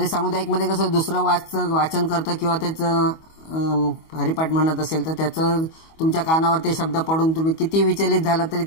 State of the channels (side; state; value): right; late; 25 ms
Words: सामुदायिकमध्ये कसं दुसरं वाचन करतं किंवा त्याचं हरिपाठ म्हणत असेल तर त्याचं तुमच्या कानावर ते शब्द पडून तुम्ही किती विचलित झाला तरी